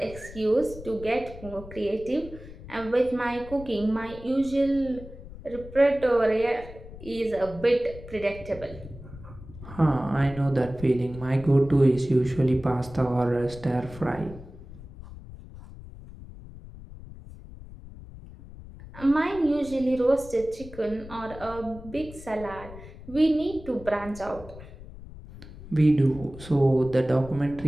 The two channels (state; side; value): noise; left; rumble, 15 dB below the sound